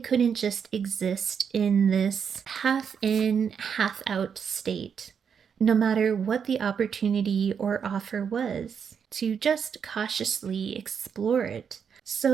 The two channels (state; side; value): quieter; left; 7.1 dB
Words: just exist in this half in, half out state, no matter what the opportunity or offer was, to just cautiously explore it.